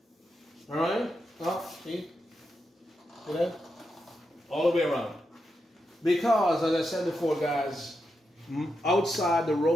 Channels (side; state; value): both; normal; correlation 0.85